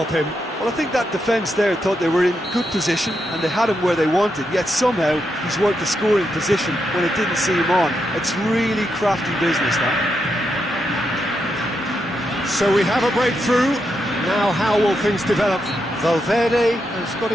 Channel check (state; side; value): normal; both; correlation 0.83